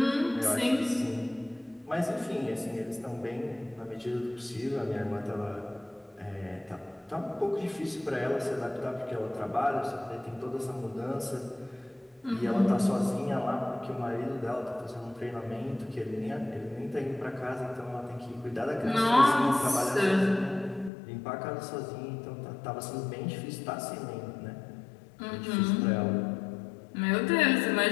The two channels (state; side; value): drops out; right; at 20.9 s